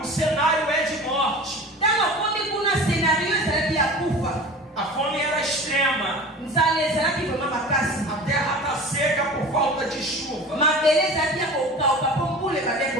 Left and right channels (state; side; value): normal; both; correlation 0.37